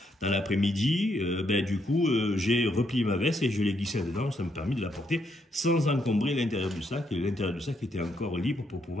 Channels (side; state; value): both; normal; correlation 0.76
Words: dans l'après-midi. Du coup, j'ai replié ma veste et je l'ai glissée dedans. Ça me permet de la porter sans encombrer l'intérieur du sac. Et l'intérieur du sac était encore libre pour